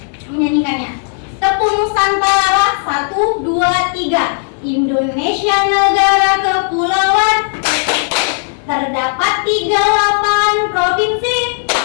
menyanyikannya. Tepuk Nusantara, 1, 2, 3. Indonesia negara kepulauan, terdapat 38 provinsi.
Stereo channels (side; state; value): right; silent; digital silence